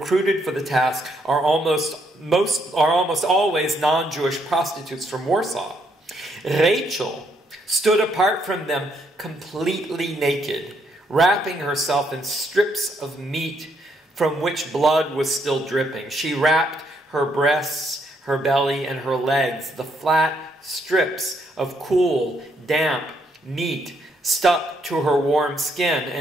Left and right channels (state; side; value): normal; both; correlation 0.73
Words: for the task are almost always non-Jewish prostitutes from Warsaw. Rachel stood apart from them completely naked, wrapping herself in strips of meat from which blood was still dripping. She wrapped her breasts, her belly, and her legs. The flat strips of cool, damp meat stuck to her warm skin,